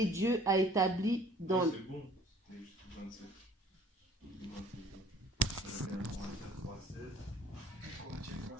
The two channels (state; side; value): normal; both; correlation 0.53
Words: Dieu a établi dans... C'est bon, c'était jusqu'au 27.